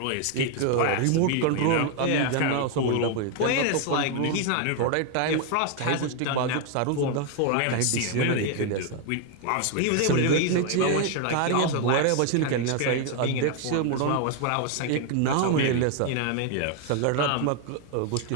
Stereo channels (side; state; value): both; different; correlation 0.01